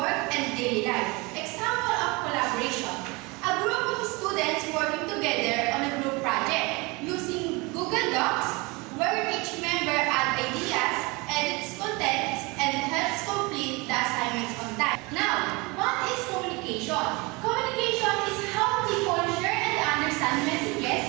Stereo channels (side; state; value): left; quieter; 25.8 dB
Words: and daily life. Example of collaboration. A group of students working together on a group project using Google Docs, where each member adds ideas, edits content, and helps complete the assignments on time. Now, what is communication? Communication is how people share and understand